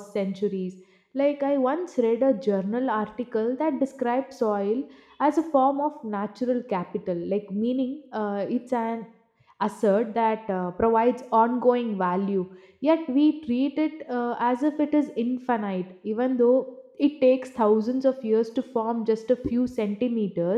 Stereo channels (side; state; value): both; identical; correlation 1.00